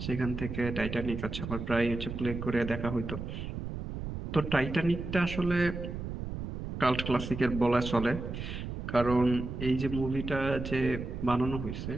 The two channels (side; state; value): right; noise; rumble, 6 dB below the sound